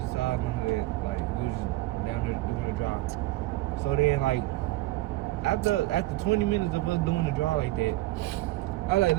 side, none of that. Like we was just down there doing a drive. So then like after 20 minutes of us doing the drive like that, I was like,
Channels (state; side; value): quieter; left; 18.2 dB